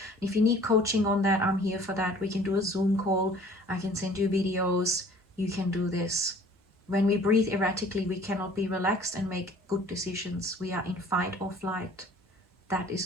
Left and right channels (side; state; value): both; normal; correlation 0.52